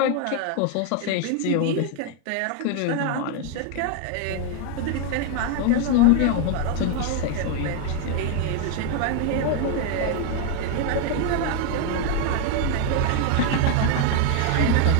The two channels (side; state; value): both; different; correlation 0.01